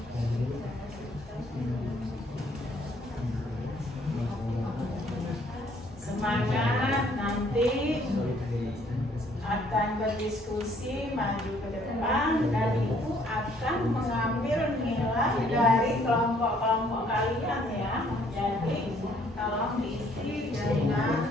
Semangat, nanti akan berdiskusi maju ke depan dan ibu akan mengambil nilai dari kelompok-kelompok kalian ya. Jadi tolong diisi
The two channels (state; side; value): normal; both; correlation 0.63